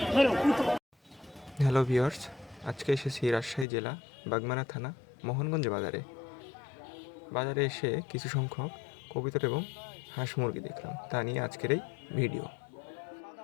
Hello viewers, আজকে এসেছি রাজশাহী জেলা বাগমারা থানা মোহনগঞ্জ বাজারে এসে কিছু সংখ্যক কবুতর এবং হাঁস মুরগি দেখলাম, তা নিয়ে আজকের এই ভিডিও।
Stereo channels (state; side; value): drops out; right; at 3.7 s